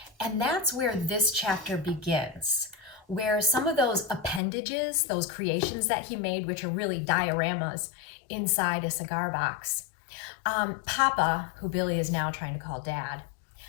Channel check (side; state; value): right; drops out; at 4.4 s